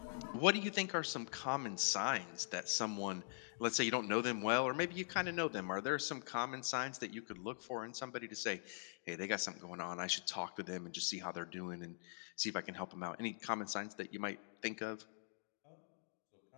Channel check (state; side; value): silent; right; digital silence